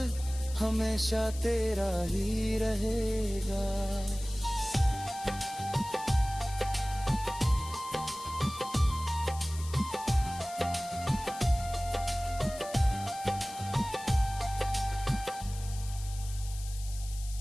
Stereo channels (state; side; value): noise; left; hiss, 14 dB below the sound